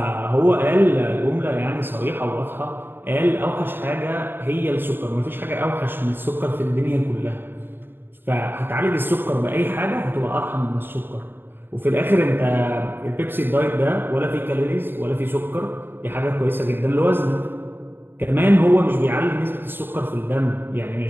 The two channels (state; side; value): late; left; 0.099 ms